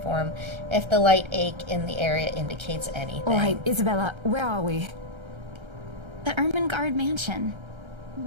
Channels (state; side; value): late; left; 1.3 ms